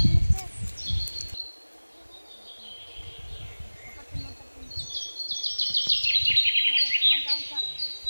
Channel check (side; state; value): both; inverted; correlation -1.00